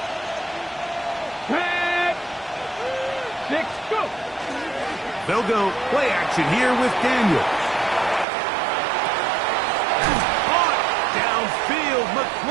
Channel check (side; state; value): left; drops out; at 8.2 s